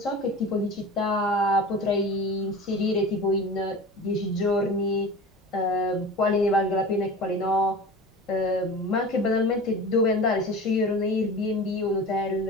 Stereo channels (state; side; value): normal; both; correlation 0.35